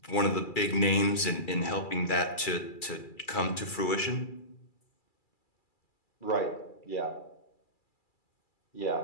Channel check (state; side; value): late; right; 2.3 ms